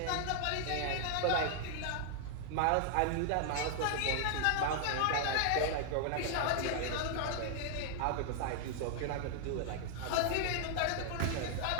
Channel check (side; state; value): both; different; correlation 0.00